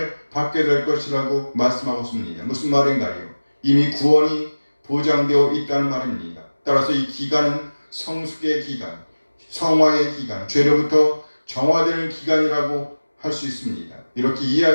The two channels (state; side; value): inverted; both; correlation -1.00